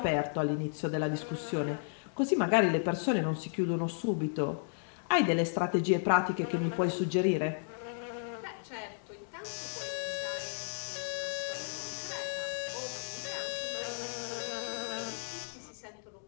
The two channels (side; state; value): right; silent; digital silence